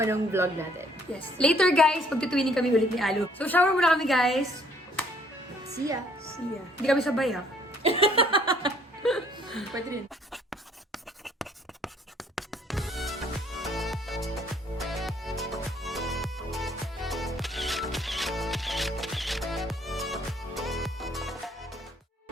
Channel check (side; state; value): both; normal; correlation 0.63